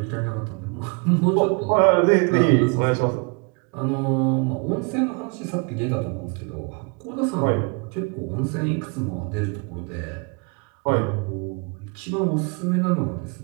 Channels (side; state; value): left; quieter; 32.6 dB